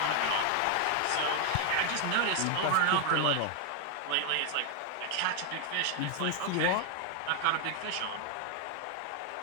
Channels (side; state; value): both; different; correlation 0.00